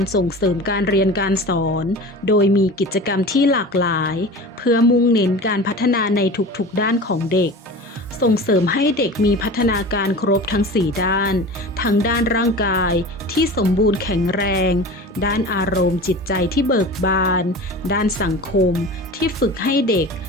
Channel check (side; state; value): both; normal; correlation 0.35